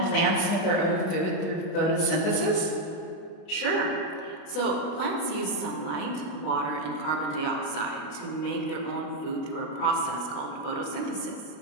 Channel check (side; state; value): right; late; 32 ms